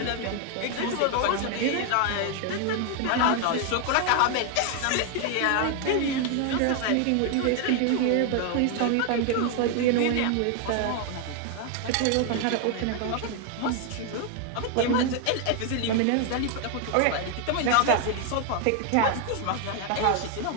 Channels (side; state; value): both; different; correlation 0.00